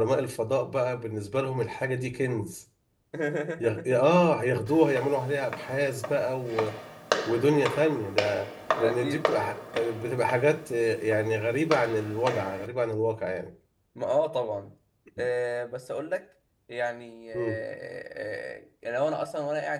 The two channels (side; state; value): both; identical; correlation 1.00